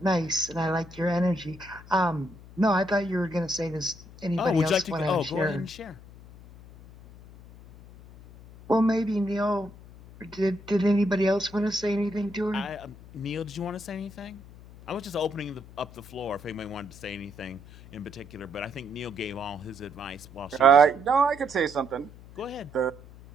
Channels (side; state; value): left; noise; hum, 19 dB below the sound